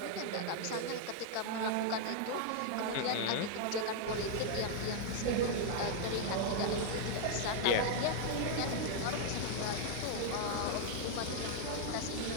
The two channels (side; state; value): both; different; correlation 0.00